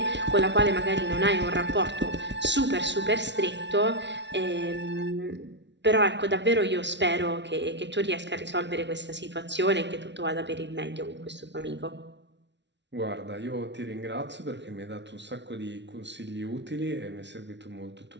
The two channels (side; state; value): left; late; 0.51 ms